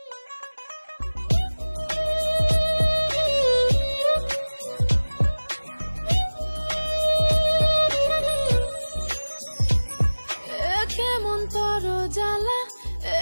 কেমন তোর জ্বালা এ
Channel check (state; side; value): inverted; both; correlation -1.00